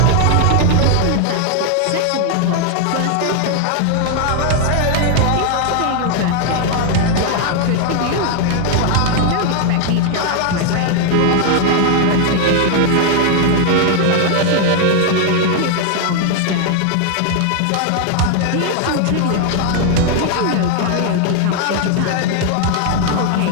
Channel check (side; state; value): both; different; correlation 0.00